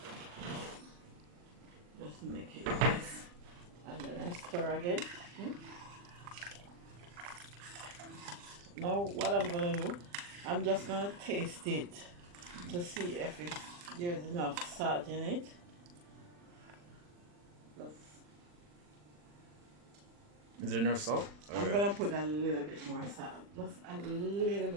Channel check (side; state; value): left; late; 40 ms